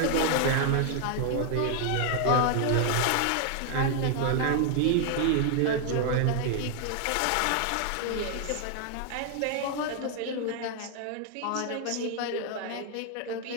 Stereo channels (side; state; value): both; different; correlation 0.00